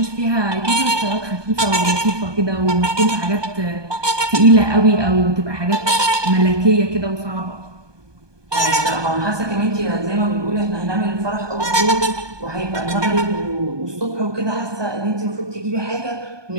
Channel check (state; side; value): late; left; 1.2 ms